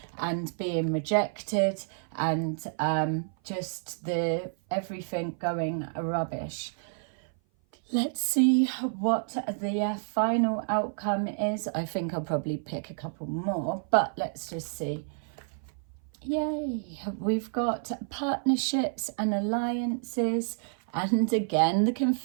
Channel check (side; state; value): left; silent; 56 dB below the other